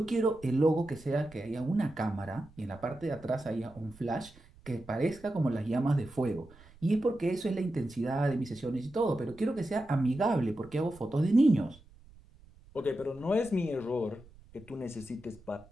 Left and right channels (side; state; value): right; noise; rumble, 24 dB below the sound